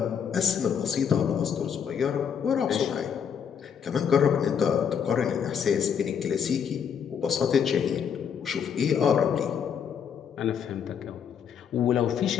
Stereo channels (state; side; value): quieter; right; 7.6 dB